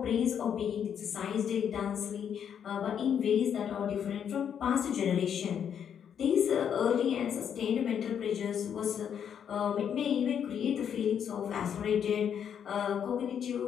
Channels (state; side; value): quieter; right; 8.4 dB